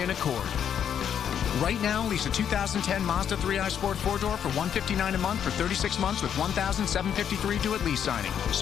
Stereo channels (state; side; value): quieter; right; 8.7 dB